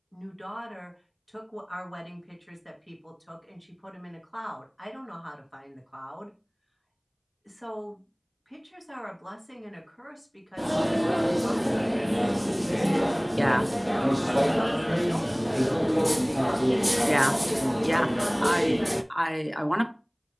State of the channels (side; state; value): both; identical; correlation 1.00